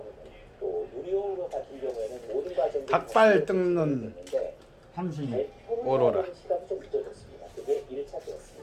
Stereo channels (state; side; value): identical; both; correlation 1.00